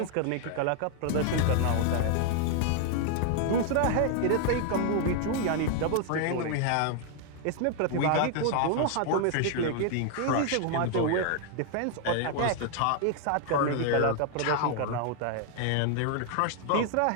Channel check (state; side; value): different; both; correlation 0.00